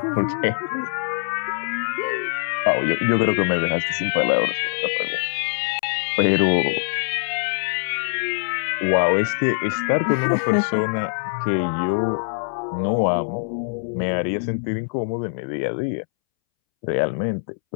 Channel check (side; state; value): right; silent; 63 dB below the other